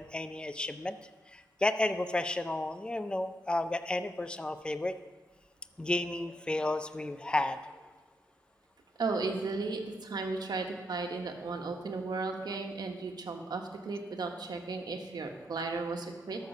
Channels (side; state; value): both; normal; correlation 0.79